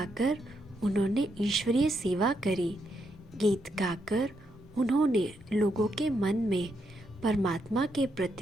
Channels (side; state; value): both; normal; correlation 0.80